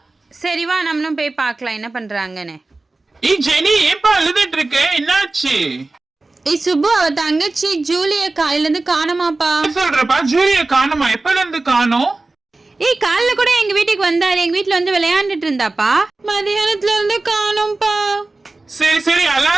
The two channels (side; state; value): left; quieter; 3.3 dB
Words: சரி வா நம்மளும் போய் பாக்கலாம் என்ன பண்றாங்கன்னு. ஜெனி ஏப்பா அழுதுட்டு இருக்க, என்னாச்சு? சுப்பு அவ தங்கச்சி ஜூலிய காலையில இருந்து காணமாப்பா. சொல்றப்பா ஜூலிய காணுமா? எப்பல இருந்து காணோம்? காலைல கூட எங்க வீட்டுக்கு வந்தாரு, எங்க வீட்டுல வந்து விளையாண்டுட்டு இருந்தாப்பா. மதியானத்துல இருந்து காணோம்ப்பா. சரி சரி